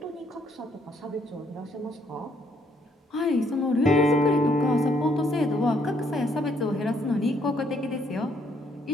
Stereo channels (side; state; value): both; normal; correlation 0.69